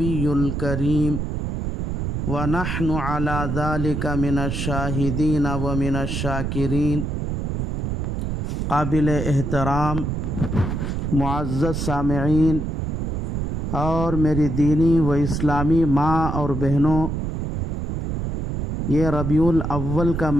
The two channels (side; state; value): right; noise; rumble, 3 dB below the sound